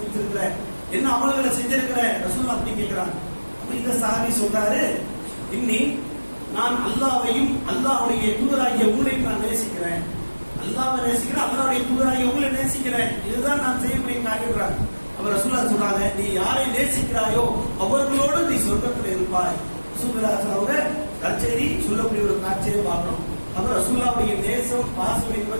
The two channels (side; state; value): both; inverted; correlation -1.00